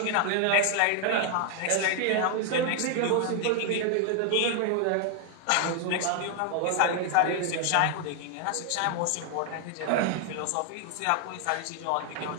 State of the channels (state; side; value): different; both; correlation 0.00